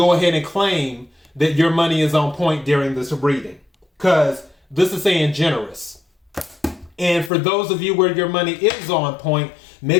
ahead and claim that your money is on point during this reading. Because this is saying generous. And for those of you where your money is on point,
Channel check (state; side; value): drops out; right; at 7.3 s